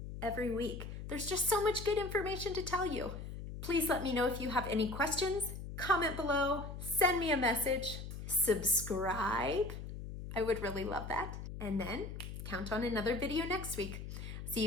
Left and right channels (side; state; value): left; noise; hum, 8 dB below the sound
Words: every week. There's just so much good information to tell you. Please let me know if you have any questions. Comment below, send me a message, subscribe. I would really love that. And then count on another video next week. See